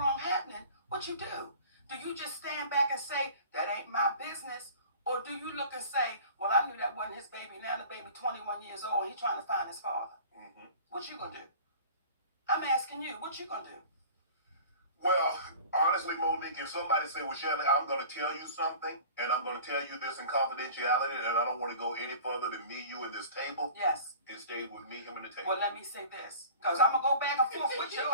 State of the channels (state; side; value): inverted; both; correlation -0.42